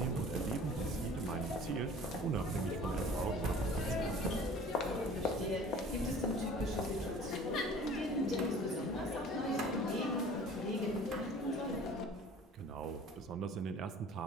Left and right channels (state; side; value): normal; both; correlation 0.46